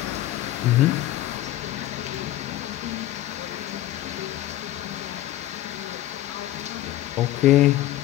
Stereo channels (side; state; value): right; quieter; 14.4 dB